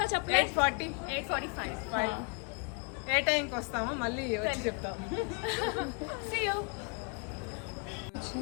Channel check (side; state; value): right; quieter; 35.8 dB